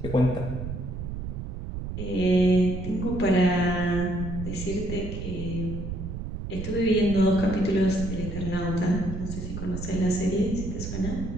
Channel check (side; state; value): right; noise; rumble, 6 dB below the sound